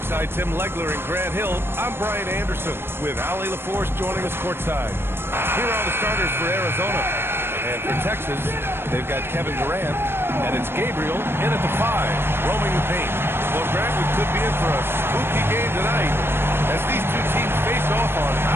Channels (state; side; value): late; left; 0.11 ms